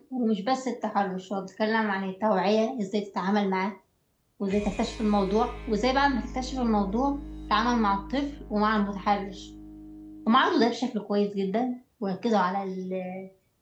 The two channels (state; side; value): identical; both; correlation 1.00